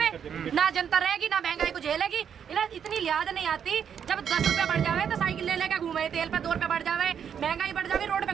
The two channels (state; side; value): quieter; left; 8.0 dB